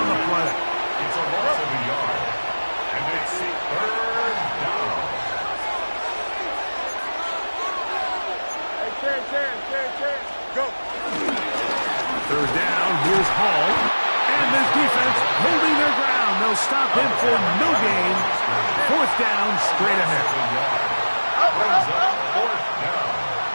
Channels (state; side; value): inverted; both; correlation -1.00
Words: the play. It's a loss of a yard. And it's third down. Go. Third down, here's Hall. And this defense holding their ground. They'll stop him for no gain. Fourth down, straight ahead. Brings up fourth down.